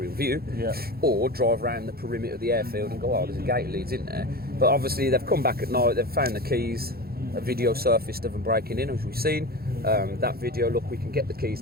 view, or drive around the perimeter of the airfield and go, oh, there's a gate leads in there. But obviously they've come back at night, they've found the keys, a video surfaced of them breaking in, as we've seen. That video, look, we can get the keys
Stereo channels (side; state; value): left; late; 0.44 ms